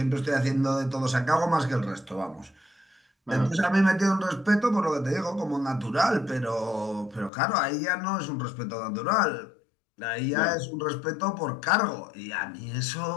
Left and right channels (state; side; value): drops out; right; at 7.3 s